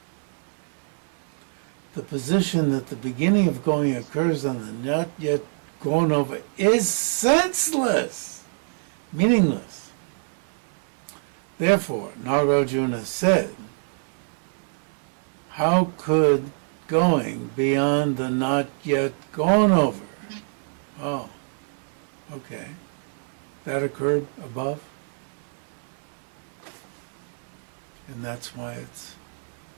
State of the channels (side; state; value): left; silent; 61 dB below the other